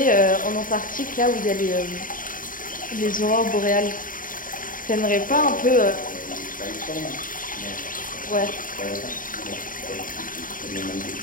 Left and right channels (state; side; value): late; right; 0.40 ms